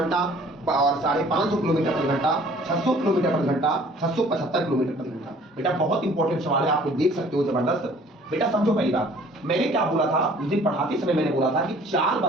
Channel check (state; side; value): normal; both; correlation 0.53